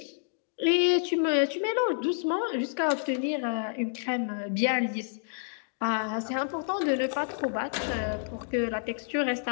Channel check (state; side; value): silent; right; digital silence